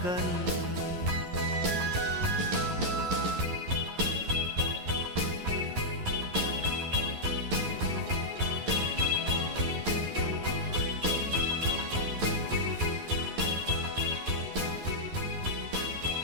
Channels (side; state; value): left; late; 11 ms